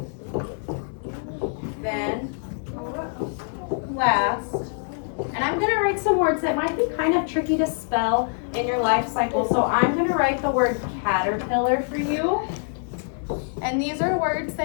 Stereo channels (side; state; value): right; silent; 62 dB below the other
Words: then, last. And I'm going to write some words that might be kind of tricky to spell in your life cycle. So I'm going to write the word caterpillar for you. And these are words